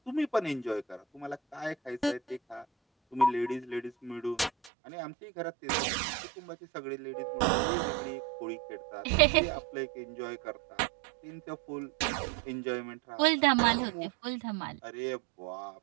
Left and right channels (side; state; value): left; drops out; at 4.7 s